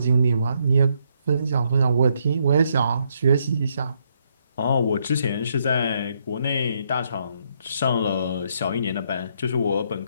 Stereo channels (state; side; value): inverted; both; correlation -0.74